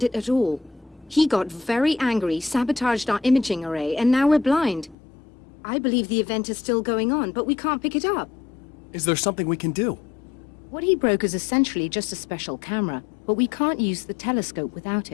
it at all. He got very angry, sabotaged our imaging array, and now we're blind. I believe the event is still going on, but we can't pick it up. Is there something we can do? What he broke is essentially just a special camera, but we can't use the telescope without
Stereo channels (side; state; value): right; drops out; at 5.0 s